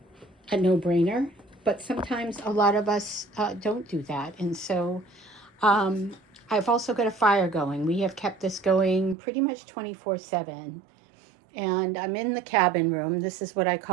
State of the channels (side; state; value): left; drops out; at 9.2 s